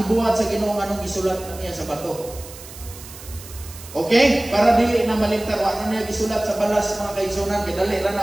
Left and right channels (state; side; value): noise; right; hiss, 16 dB below the sound